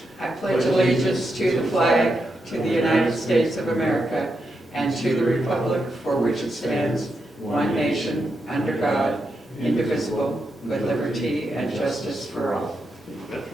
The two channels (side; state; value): both; normal; correlation 0.85